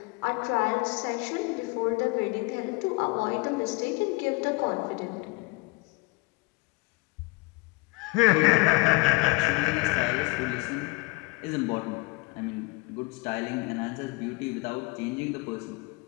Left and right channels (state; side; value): quieter; right; 23.2 dB